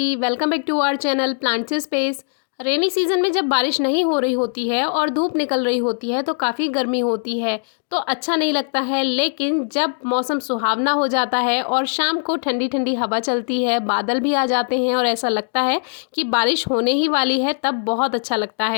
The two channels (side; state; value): right; silent; digital silence